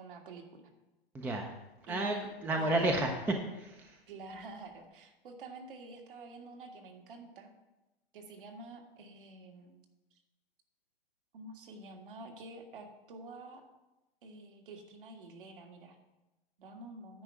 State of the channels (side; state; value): both; normal; correlation 0.44